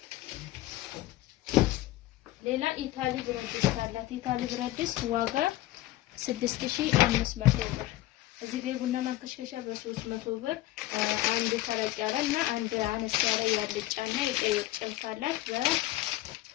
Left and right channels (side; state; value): right; quieter; 16.3 dB